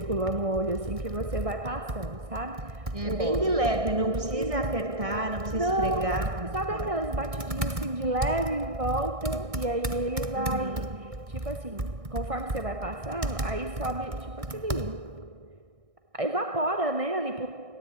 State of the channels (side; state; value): left; late; 1.6 ms